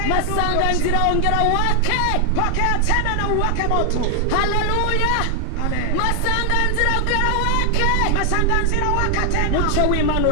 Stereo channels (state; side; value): different; both; correlation 0.00